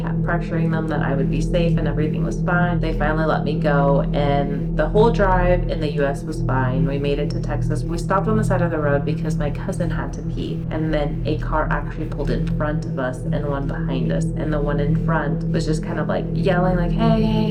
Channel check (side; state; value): both; identical; correlation 1.00